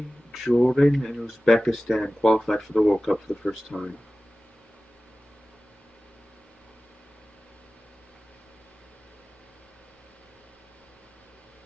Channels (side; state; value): both; normal; correlation 0.96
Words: Jordan, and Uzbekistan qualified for the World Cup for the first time.